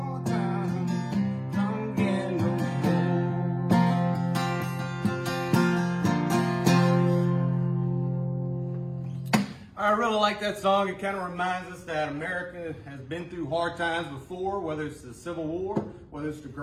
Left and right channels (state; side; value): identical; both; correlation 1.00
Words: times come again no more. I really like that song. It kind of reminds us that America has been through hard times before, whether it's the Civil War, whether it's the